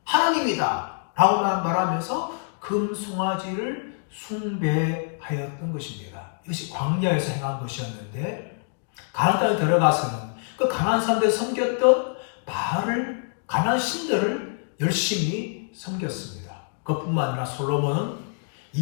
하나님이다 라고 말하면서 금송아지를 숭배하였던 것입니다. 이것이 광야에서 행한 것이었는데 가나안 땅에 들어가서는 그 가나안 사람들이 섬겼던 바알을, 가나안 신들을 열심히 섬겼습니다. 그뿐만 아니라 솔로몬은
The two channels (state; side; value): silent; right; 59 dB below the other